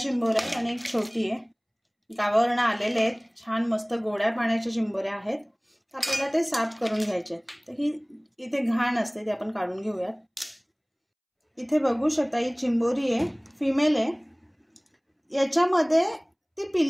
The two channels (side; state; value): both; identical; correlation 1.00